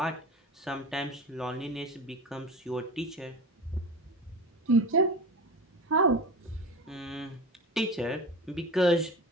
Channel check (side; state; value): both; normal; correlation 0.30